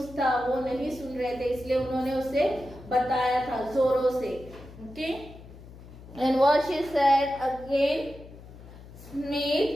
था वो नहीं सुन रहे थे, इसलिए उन्होंने उसे बताया था जोरों से। Okay, and what she said again,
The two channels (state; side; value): noise; left; hum, 18 dB below the sound